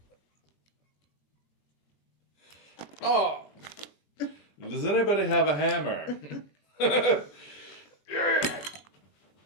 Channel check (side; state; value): right; late; 20 ms